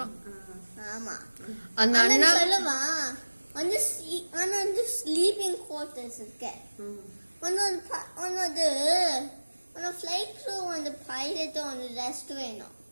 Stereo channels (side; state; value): both; inverted; correlation -1.00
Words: ஆமா, அந்த அண்ணா சொல்லுவா வந்து வந்து ஸ்லீப்பிங் குவார்ட்டர்ஸ் இருக்கு. ஒன்னது ஃப்ளைட் க்ரூ வந்து பைலட் வந்து ரெஸ்ட் வேணும்.